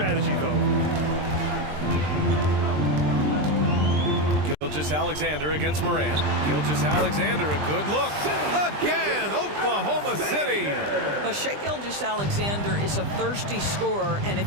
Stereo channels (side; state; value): left; late; 20 ms